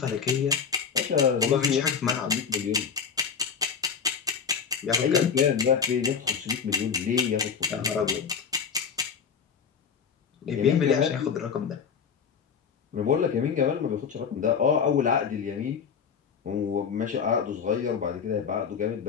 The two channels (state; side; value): quieter; right; 6.6 dB